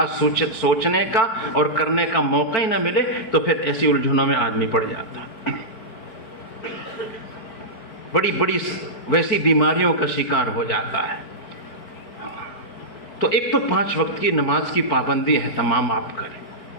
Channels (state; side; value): late; right; 4.7 ms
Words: سوچنے کا اور کرنے کا موقع ہی نہ ملے، تو پھر ایسی الجھنوں میں آدمی پڑ جاتا، بڑی بڑی ویسی بیماریوں کا شکار ہو جاتا ہے. تو ایک تو 5 وقت کی نماز کی پابندی اہتمام آپ کریں.